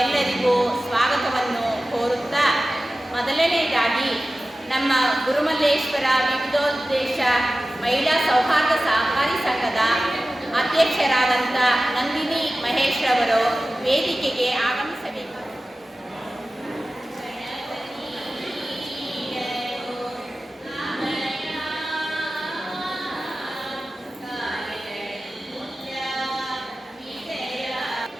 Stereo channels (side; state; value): both; normal; correlation 0.95